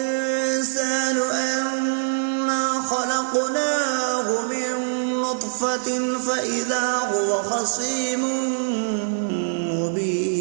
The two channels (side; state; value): left; silent; digital silence